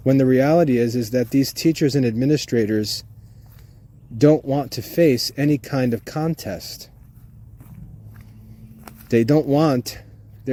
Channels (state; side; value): identical; both; correlation 1.00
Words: when the reality is that these teachers and administrators don't want to face any kind of contest. They don't want